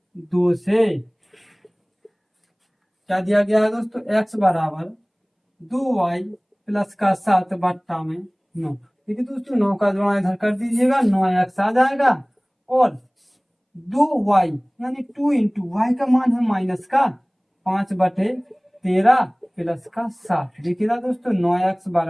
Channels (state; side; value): identical; both; correlation 1.00